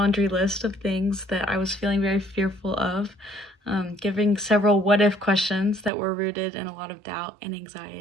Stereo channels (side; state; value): left; drops out; at 5.9 s